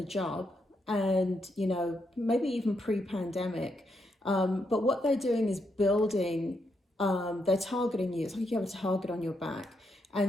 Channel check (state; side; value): normal; both; correlation 0.80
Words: job, and, you know, maybe even pre-pandemic. But what they're doing is building, they're targeting you. It's like you have a target on your back.